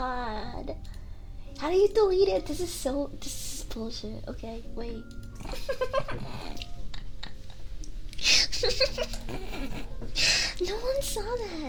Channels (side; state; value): both; identical; correlation 1.00